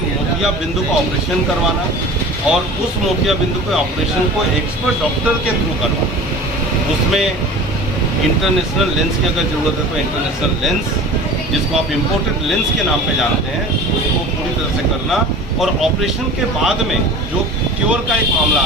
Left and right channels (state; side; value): normal; both; correlation 0.39